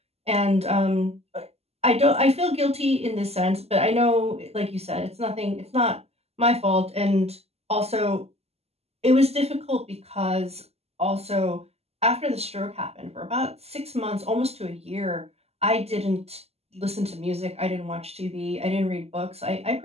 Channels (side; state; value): left; late; 0.30 ms